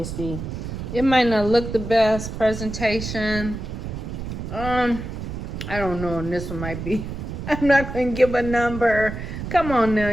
It might not look the best presentation. I don't know, and this one might be. I'm not gonna give a number. Come on now,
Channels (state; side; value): noise; right; rumble, 7 dB below the sound